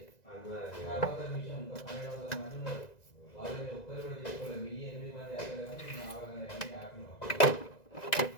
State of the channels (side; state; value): right; late; 1.9 ms